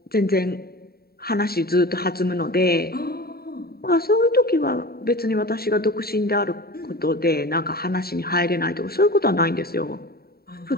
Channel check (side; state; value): right; late; 0.45 ms